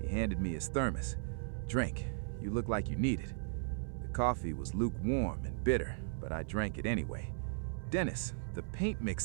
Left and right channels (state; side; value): silent; left; 53 dB below the other